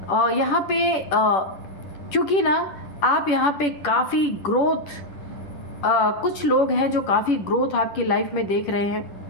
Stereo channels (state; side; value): late; right; 10 ms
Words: यहाँ पे क्योंकि ना आप यहाँ पे काफ़ी ग्रोथ, कुछ लोग हैं जो काफ़ी ग्रोथ आपकी लाइफ में देख रहे